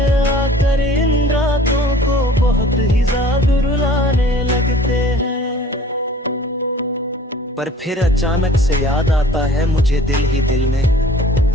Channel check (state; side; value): normal; both; correlation 0.49